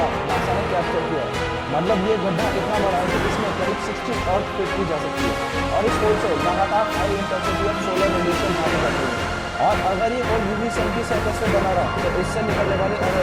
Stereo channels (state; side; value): identical; both; correlation 1.00